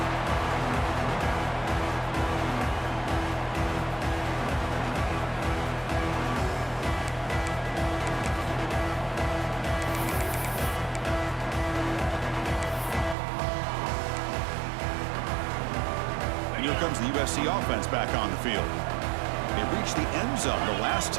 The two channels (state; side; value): drops out; left; at 13.2 s